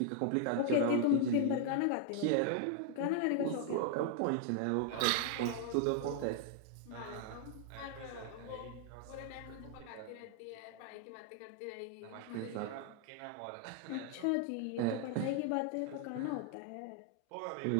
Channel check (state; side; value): different; both; correlation 0.00